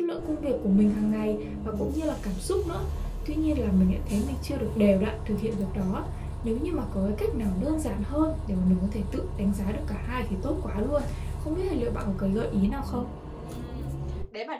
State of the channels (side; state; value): both; identical; correlation 1.00